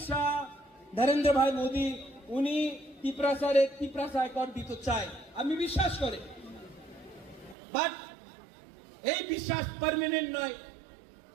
শাহ, নরেন্দ্র ভাই মোদী উনি ত্রিপুরা কর দিতে চায়, আমি বিশ্বাস করি, বাট এই বিশ্বাস পার্মানেন্ট নয়।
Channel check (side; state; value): left; drops out; at 7.6 s